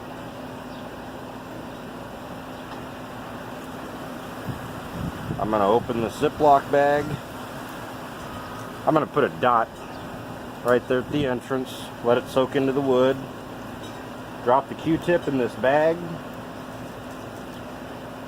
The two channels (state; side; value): identical; both; correlation 1.00